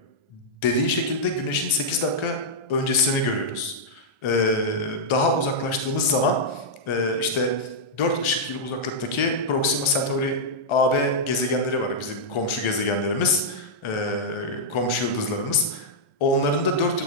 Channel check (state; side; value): late; right; 1.4 ms